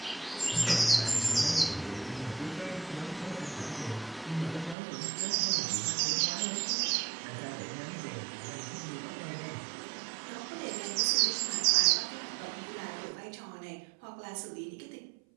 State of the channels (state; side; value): drops out; left; at 4.8 s